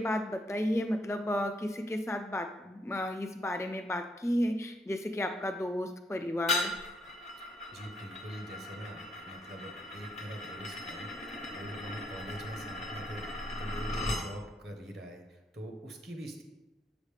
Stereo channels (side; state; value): both; normal; correlation 0.74